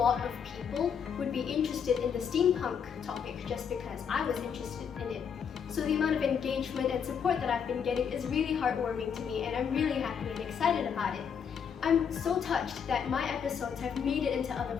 of people would be interested in the steampunk topic just because I was interested in it. So the amount of engagement and support that I've been getting is really heartwarming to me, and I'm really happy and excited about it. I'm so touched that my episodes have made it into other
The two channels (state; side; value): quieter; right; 7.2 dB